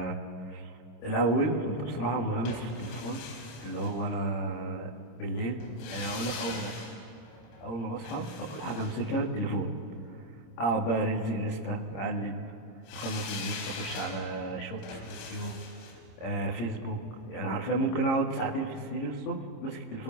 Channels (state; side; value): late; right; 26 ms